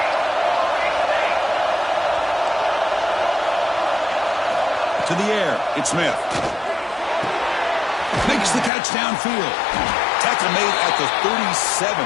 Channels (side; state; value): right; drops out; at 8.7 s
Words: To the air, it's Smith. Makes the catch downfield. Tackle made at the 37.